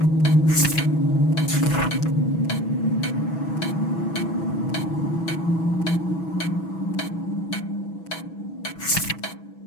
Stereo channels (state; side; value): late; right; 6.1 ms